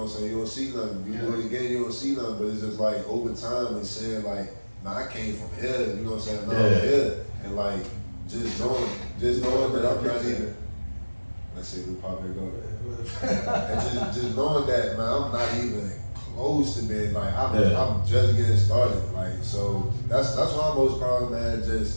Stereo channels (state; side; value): inverted; both; correlation -1.00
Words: I'm saying, you don't see nothing. You do it again, you don't see nothing, but it's just like over time and saying like, nah, I came from here, you know what I'm saying, now I'm here. And like, just knowing that I'm not even, let's see, we pop it go. And just knowing that, man, I'm not even close to being like, I'm just getting started. Like, so that's why I'm most proud of, man.